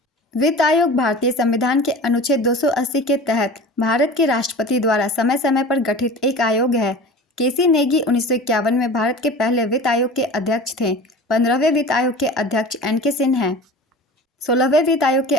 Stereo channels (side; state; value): both; normal; correlation 0.37